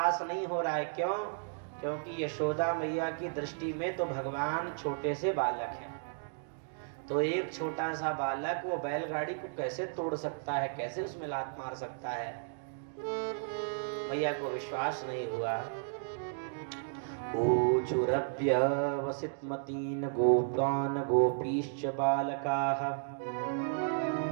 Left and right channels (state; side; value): silent; left; digital silence